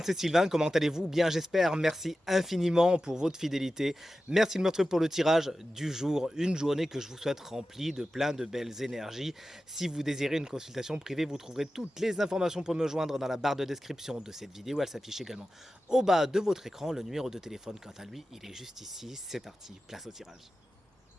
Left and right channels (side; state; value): both; normal; correlation 0.94